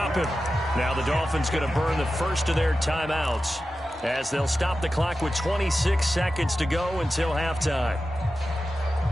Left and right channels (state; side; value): normal; both; correlation 0.93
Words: him. Now the Dolphins going to burn the first of their timeouts as they'll stop the clock with 26 seconds to go until halftime.